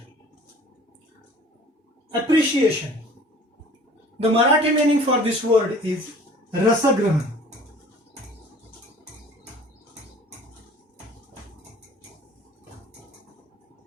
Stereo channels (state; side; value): normal; both; correlation 0.48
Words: Appreciation. The Marathi meaning for this word is rasagrahan.